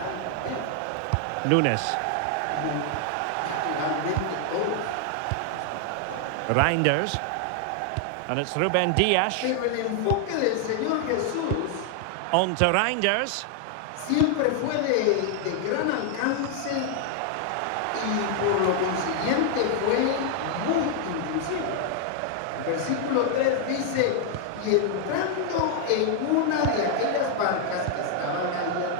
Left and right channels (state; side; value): different; both; correlation 0.00